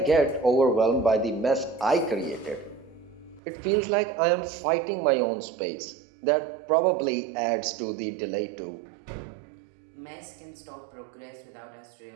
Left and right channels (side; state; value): left; drops out; at 3.4 s